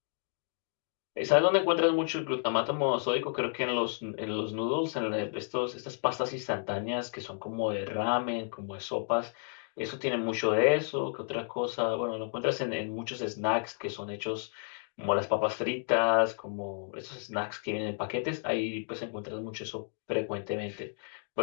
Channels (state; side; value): silent; right; 57 dB below the other